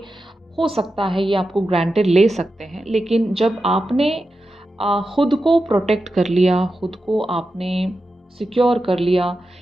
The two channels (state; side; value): normal; both; correlation 0.91